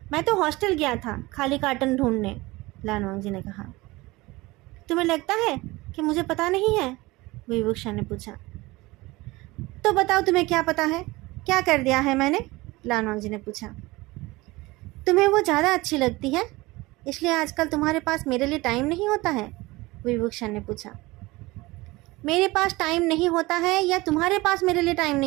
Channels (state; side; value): quieter; left; 21.2 dB